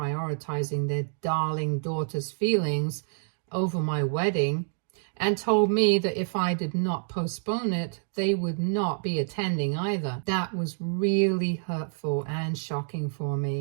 their darling daughter's feelings over my wedding, and told me that if I did not postpone it, they would not be attending either. That was really hurtful and shocking for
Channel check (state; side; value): silent; left; 60 dB below the other